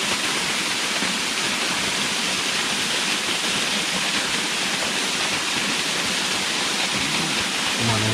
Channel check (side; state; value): both; identical; correlation 1.00